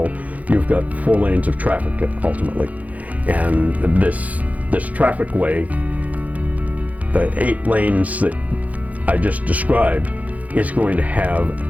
you've got 4 lanes of traffic ultimately. And this traffic way, the 8 lanes that I just described, is going to have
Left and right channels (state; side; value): late; left; 0.073 ms